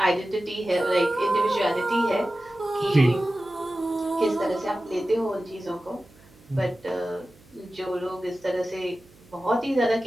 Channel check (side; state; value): right; noise; hum, 27 dB below the sound